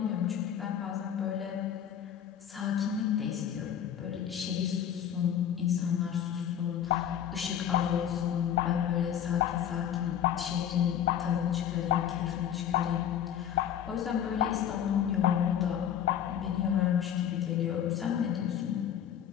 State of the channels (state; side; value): quieter; right; 9.6 dB